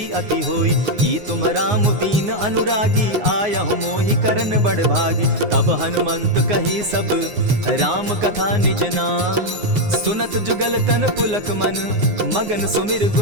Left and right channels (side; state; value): left; late; 9.6 ms